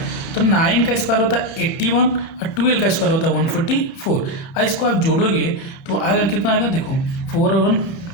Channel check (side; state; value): right; late; 30 ms